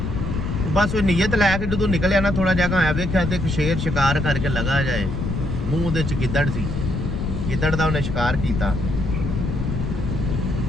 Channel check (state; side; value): noise; left; rumble, 2 dB below the sound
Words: बस वो नीयत लैके जो निकलिया ना, थोड़ा जगह आया वेख्या तो एक शेर शिकार करके लगा जाए, मूँह दे गिद्दड़ सी, गिद्दड़ का उन्हें शिकार किया।